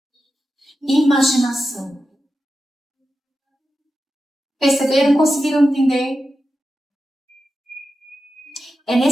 Imaginação. Perceberam? Conseguiram entender? É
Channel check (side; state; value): both; normal; correlation 0.91